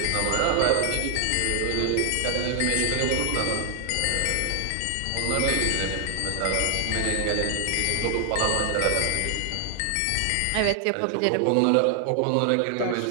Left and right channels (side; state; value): both; different; correlation 0.00